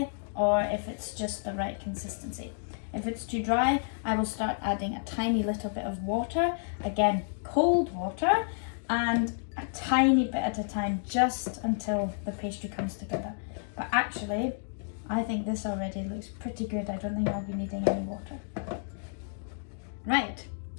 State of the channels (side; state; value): right; silent; digital silence